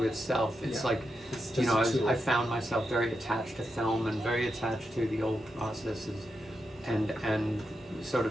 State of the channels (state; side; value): normal; both; correlation 0.86